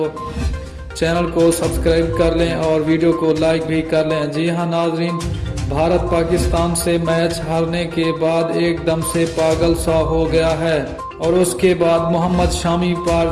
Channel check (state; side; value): identical; both; correlation 1.00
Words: چینل کو سبسکرائب کر لیں اور ویڈیو کو لائک بھی کر لیں۔ جی ہاں ناظرین، بھارت پاکستان سے میچ ہارنے کے بعد ایک دم سے پاگل سا ہو گیا ہے اور اس کے بعد محمد شامی پر